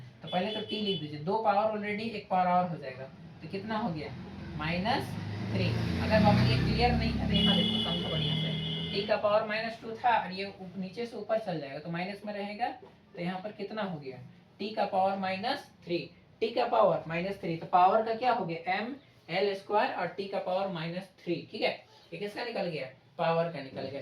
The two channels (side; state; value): both; identical; correlation 1.00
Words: तो पहले तो t लिख दीजिए, दो पावर ऑलरेडी, एक पावर और हो जाएगा, तो कितना हो गया, माइनस थ्री। अगर बाबू ये क्लियर नहीं है तो यहाँ देखो समझो बढ़िया से, टी का पावर माइनस टू था, और ये नीचे से ऊपर चल जाएगा तो माइनस में रहेगा, तो यहाँ पर कितना हो गया, टी का पावर माइनस थ्री, टी का पावर माइनस थ्री, तो पावर का क्या हो गया, एम एल स्क्वायर और टी का पावर माइनस थ्री, ठीक है। ये किसका निकल गया, पावर का निकल गया।